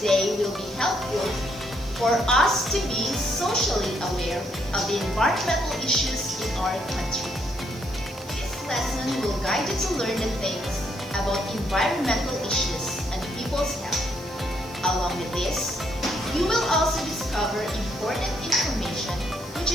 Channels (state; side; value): noise; right; hiss, 21 dB below the sound